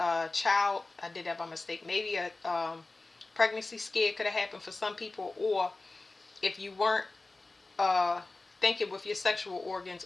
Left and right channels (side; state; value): right; quieter; 3.3 dB